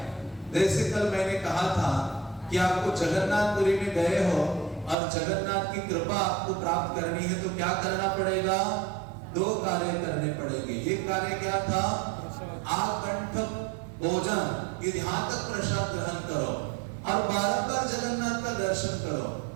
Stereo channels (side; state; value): left; drops out; at 5.0 s